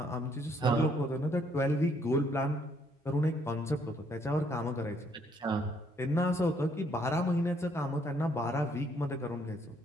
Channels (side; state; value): both; normal; correlation 0.68